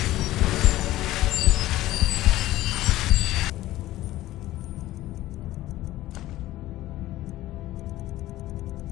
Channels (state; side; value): quieter; right; 15.7 dB